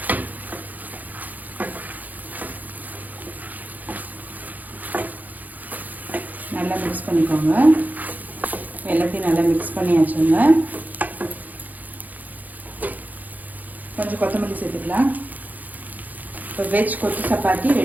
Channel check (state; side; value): late; left; 0.081 ms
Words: நல்லா மிக்ஸ் பண்ணிக்கோங்க. எல்லாத்தையும் நல்லா மிக்ஸ் பண்ணியாச்சுங்க. கொஞ்சம் கொத்தமல்லி சேர்த்துக்கலாம். இப்போ வெஜ் கொத்து சப்பாத்தி